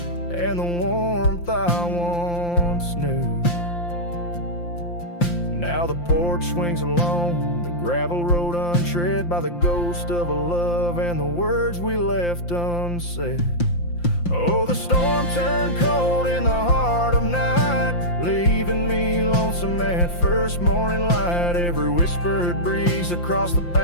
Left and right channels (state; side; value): late; right; 5.8 ms